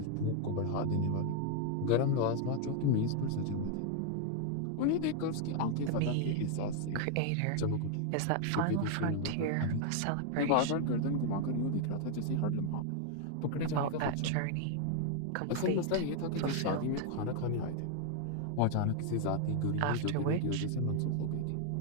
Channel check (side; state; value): both; different; correlation 0.00